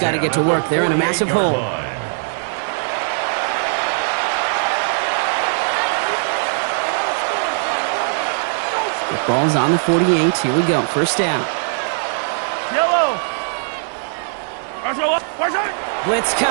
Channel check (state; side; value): silent; left; digital silence